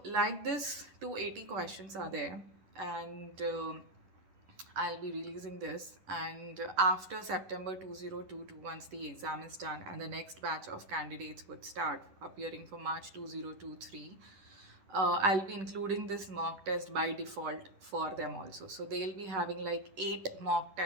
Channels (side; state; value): left; late; 10 ms